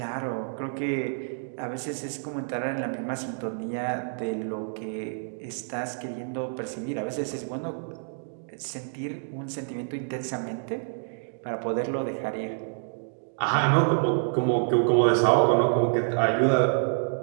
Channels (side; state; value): left; silent; digital silence